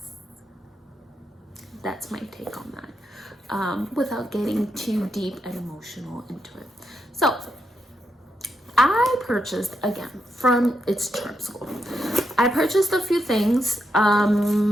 that's my take on that, without getting too deep and emotional into it. So I purchased, again, from It's Charm School, I purchased a few things.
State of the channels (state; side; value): normal; both; correlation 0.83